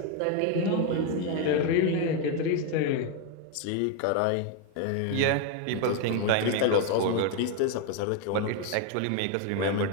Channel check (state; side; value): different; both; correlation 0.01